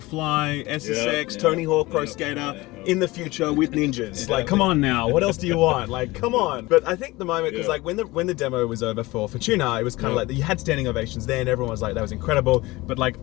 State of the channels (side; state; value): right; quieter; 20.7 dB